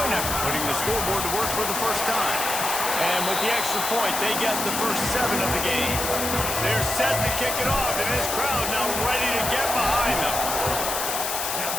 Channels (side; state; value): left; noise; hiss, 2 dB below the sound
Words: after putting the scoreboard to work for the first time. And with the extra point, they get the first 7 of the game. They're set to kick it off, and this crowd now ready to get behind them.